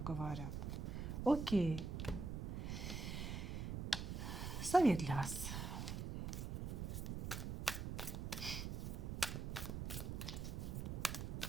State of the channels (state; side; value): noise; right; rumble, 3 dB below the sound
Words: Окей. Совет для вас.